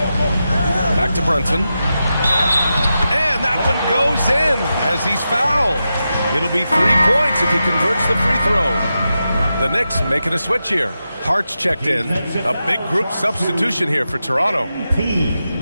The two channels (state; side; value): inverted; both; correlation -0.89